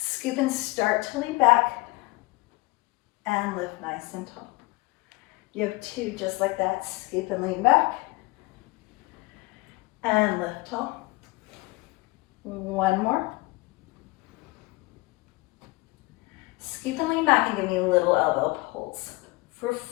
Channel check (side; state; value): right; quieter; 22.5 dB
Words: and start to lean back and lift nice and tall. You have 2 just like that. Scoop and lean back and lift tall. 1 more. Scoop and lean back and give me little elbow pulls. For